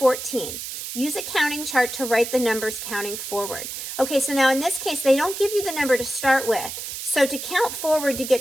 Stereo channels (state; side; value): noise; right; hiss, 7 dB below the sound